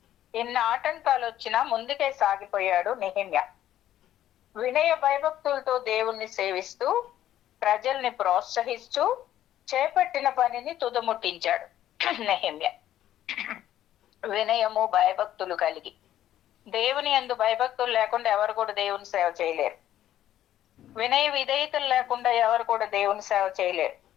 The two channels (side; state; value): right; quieter; 12.2 dB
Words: ఎన్ని ఆటంకాలు వచ్చినా ముందుకే సాగిపోయాడు నెహెమ్యా. వినయ భయభక్తులతో దేవుణ్ణి సేవిస్తూ, ప్రజల్ని ప్రోత్సహిస్తూ చేపట్టిన పనిని తుదముట్టించాడు నెహెమ్యా. వినయము భయభక్తులు కలిగి, దేవుని యందు భయభక్తులు లేకుండా ఎవరు కూడా దేవుని సేవ చేయలేరు. వినయ విధేయతలు లేకుండా ఎవరు కూడా దేవుని సేవ చేయలేరు.